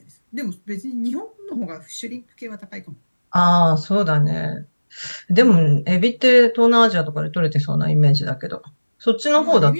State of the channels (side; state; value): both; inverted; correlation -1.00